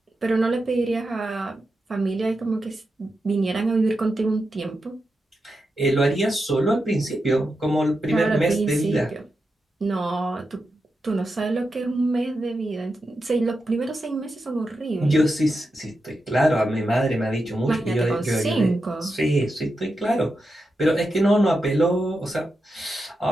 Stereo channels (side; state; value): both; normal; correlation 0.88